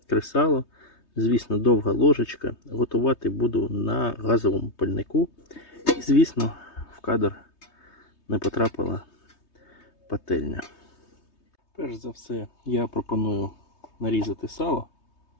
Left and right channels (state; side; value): late; right; 3.2 ms